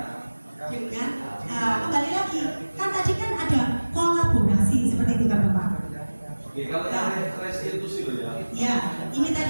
Dengan kembali lagi, kan tadi kan ada kolaborasi seperti itu kan Bapak. Oke, kalau yang restitusi loh ya. Ya, ini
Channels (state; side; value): inverted; both; correlation -1.00